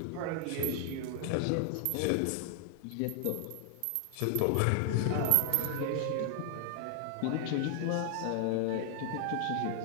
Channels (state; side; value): different; both; correlation 0.00